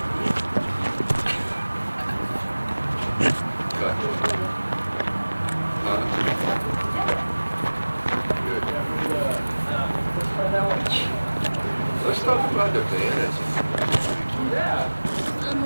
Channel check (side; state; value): both; inverted; correlation -1.00